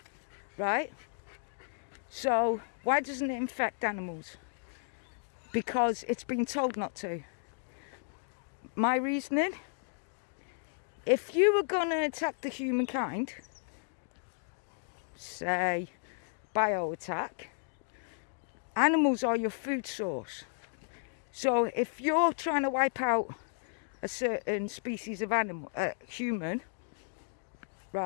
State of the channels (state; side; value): silent; right; digital silence